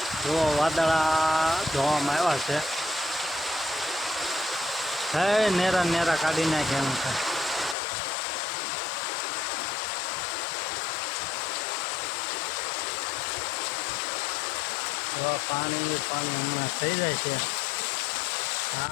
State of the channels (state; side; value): drops out; right; at 7.8 s